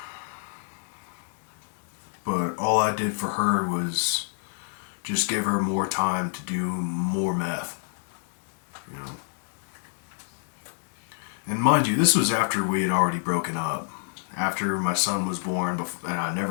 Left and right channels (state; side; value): silent; right; digital silence